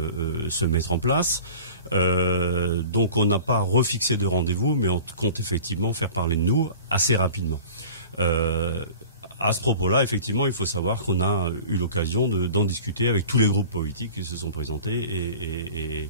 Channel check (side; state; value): both; inverted; correlation -0.41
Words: se mettre en place. Donc on n'a pas refixé de rendez-vous, mais on compte effectivement faire parler de nous assez rapidement. À ce propos-là, effectivement, il faut savoir qu'on a eu l'occasion d'en discuter avec tous les groupes politiques qui se sont présentés et